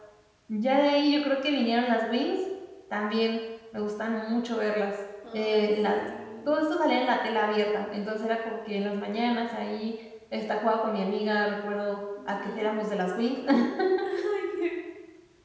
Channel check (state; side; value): identical; both; correlation 1.00